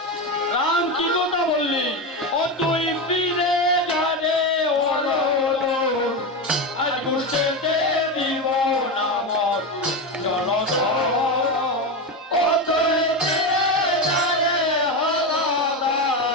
রাম কি কথা বললি? ও তুই ফিরে যারে আজ ঘুষতে দিব না মর জলধর। ও তুই ফিরে যারে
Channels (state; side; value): normal; both; correlation 0.16